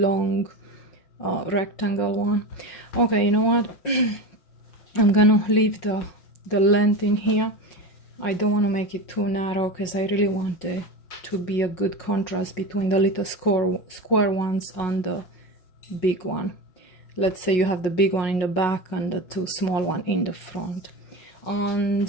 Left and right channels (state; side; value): late; right; 5.5 ms